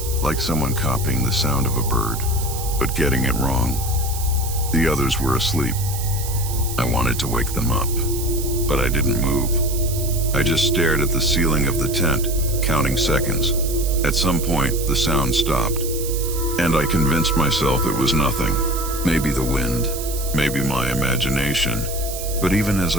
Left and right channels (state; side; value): noise; right; hiss, 9 dB below the sound